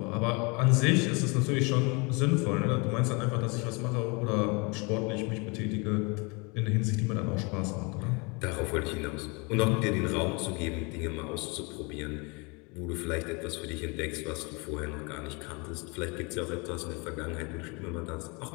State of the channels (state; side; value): quieter; right; 29.8 dB